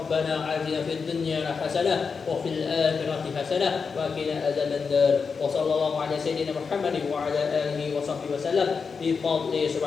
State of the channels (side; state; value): right; quieter; 5.4 dB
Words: آتنا في الدنيا حسنة وفي الآخرة حسنة وقنا عذاب النار. وصلى الله على سيدنا محمد وعلى آله وصحبه وسلم بفضله.